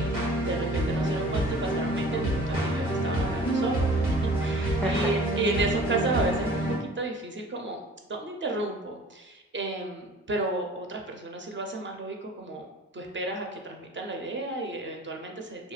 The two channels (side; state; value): both; normal; correlation 0.47